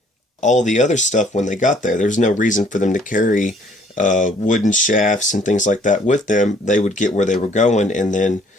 all the other stuff when they got there. There's no reason for them to carry wooden shafts and things like that with them. They would get where they were going, and then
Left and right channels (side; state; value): both; normal; correlation 0.61